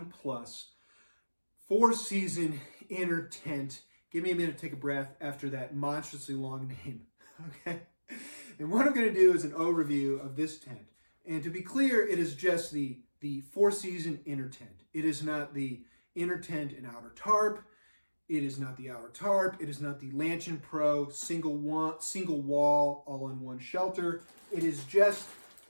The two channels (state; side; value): inverted; both; correlation -1.00